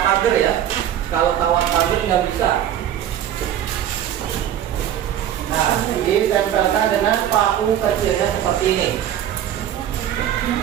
pagar ya. Kalau kawat pagar nggak bisa. Nah, ditempelkan dengan paku kecilnya seperti ini.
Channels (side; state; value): left; quieter; 10.8 dB